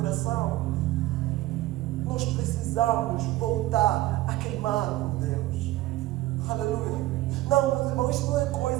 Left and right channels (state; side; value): quieter; left; 16.7 dB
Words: Nós precisamos voltar a queimar com Deus. Aleluia. Não, meus irmãos, isso não é